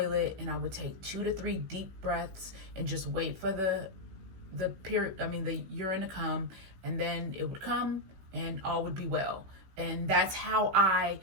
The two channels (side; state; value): left; late; 16 ms